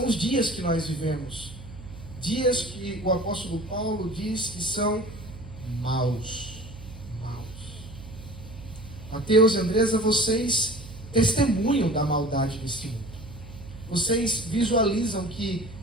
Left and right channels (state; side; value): noise; right; hum, 15 dB below the sound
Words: os dias que nós vivemos. Dias que o apóstolo Paulo diz que são maus. Mateus e Andresa, vocês testemunham da maldade deste mundo. Vocês visualizam que,